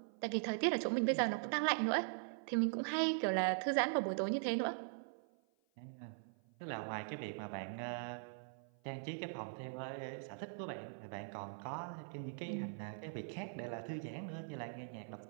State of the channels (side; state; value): left; silent; 50 dB below the other